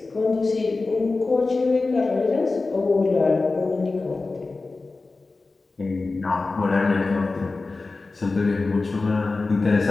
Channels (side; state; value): right; quieter; 3.7 dB